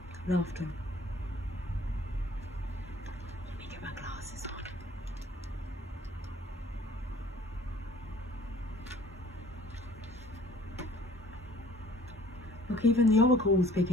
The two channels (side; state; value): both; normal; correlation 0.54